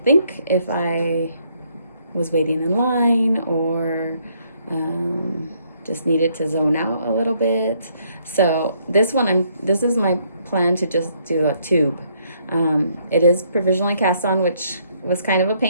if I was waiting in line or just needed to zone out a little bit. So this is my plan to just do a tube. It is provisionally cast on, which was kind of a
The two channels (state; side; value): inverted; both; correlation -0.69